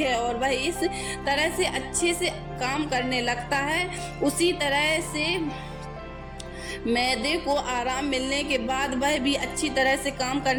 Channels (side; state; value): both; identical; correlation 1.00